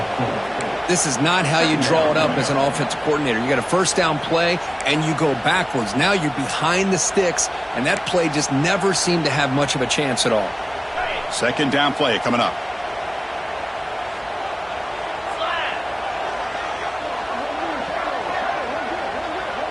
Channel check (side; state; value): both; identical; correlation 1.00